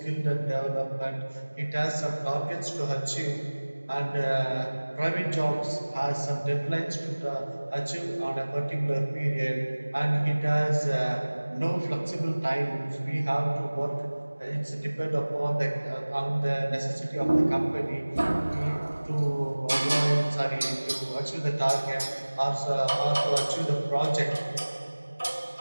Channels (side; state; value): both; inverted; correlation -1.00